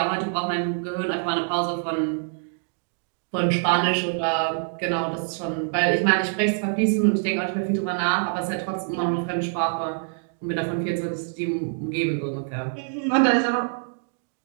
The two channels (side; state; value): left; silent; digital silence